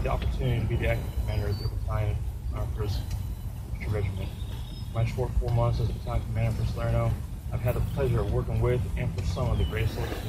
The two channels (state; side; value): identical; both; correlation 1.00